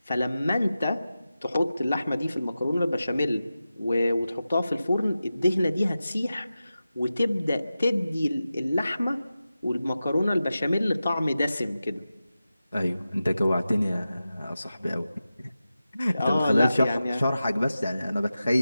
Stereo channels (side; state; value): both; inverted; correlation -0.93